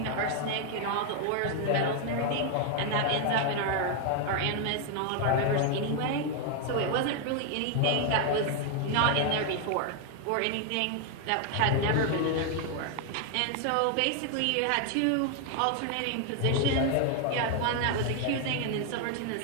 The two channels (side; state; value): both; different; correlation 0.00